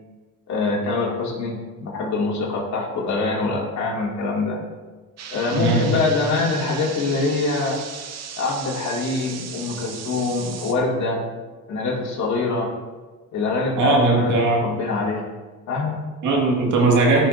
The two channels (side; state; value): both; normal; correlation 0.20